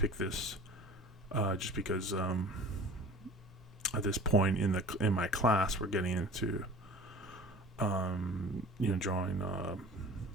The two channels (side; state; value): both; normal; correlation 0.42